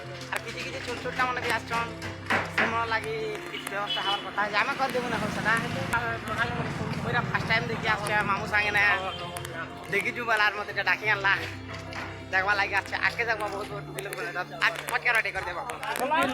আর কিছু কিছু ছোট ছোট মানে भी आछन समर लागि व्यवस्था हमार কথা जामे कर देबो ना हो सदा ओइरा फर्स्ट टाइम देखि आछे मामू संगे ना देखि जु बालार मते डाकी आनला देखबा लागि आछे आके देखबा बहुत बहुत किलो आज पटका रेडी कर देबा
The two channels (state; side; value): identical; both; correlation 1.00